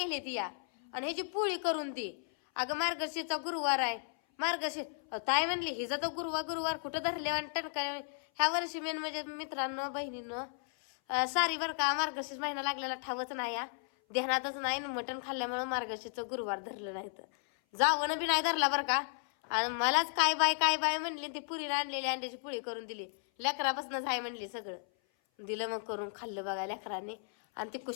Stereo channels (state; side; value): silent; right; 55 dB below the other